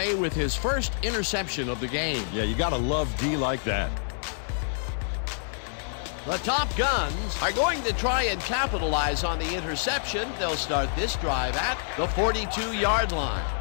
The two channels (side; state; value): right; silent; digital silence